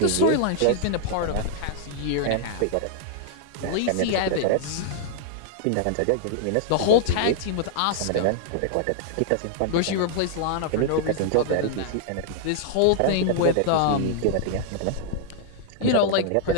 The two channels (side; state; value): both; different; correlation -0.01